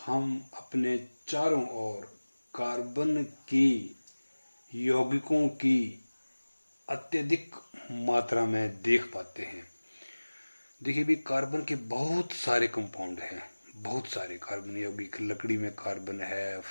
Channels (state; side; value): inverted; both; correlation -1.00